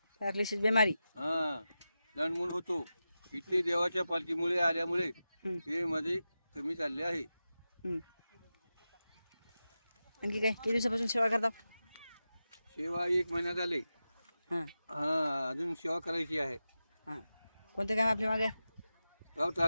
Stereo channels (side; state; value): both; inverted; correlation -0.92